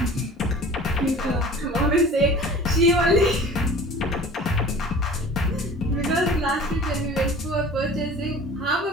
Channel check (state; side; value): normal; both; correlation 0.42